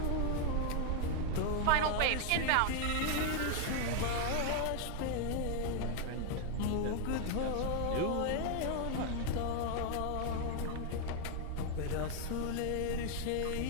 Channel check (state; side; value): different; both; correlation 0.00